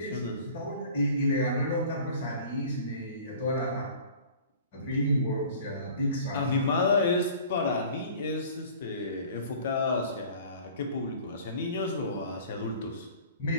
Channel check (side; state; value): both; inverted; correlation -0.46